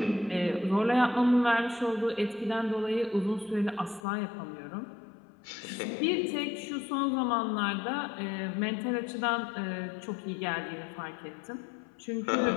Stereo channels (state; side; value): drops out; right; at 4.0 s